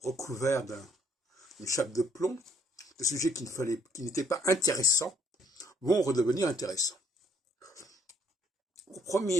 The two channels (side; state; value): both; normal; correlation 0.66